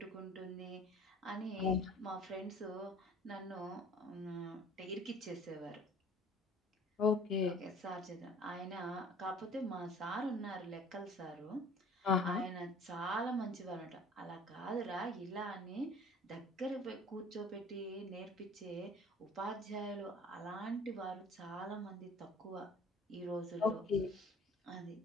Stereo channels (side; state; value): both; normal; correlation 0.49